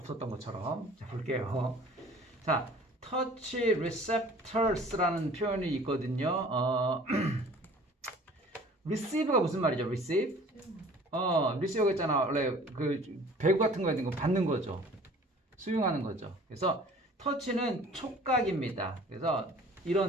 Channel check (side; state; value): both; normal; correlation 0.48